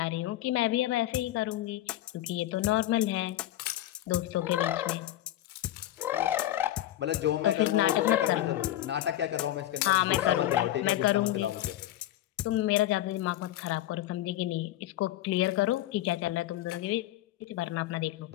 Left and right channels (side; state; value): right; quieter; 13.8 dB